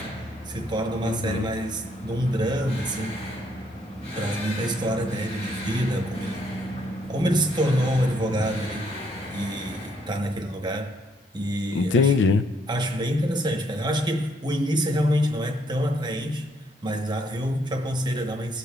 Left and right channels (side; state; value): both; normal; correlation 0.70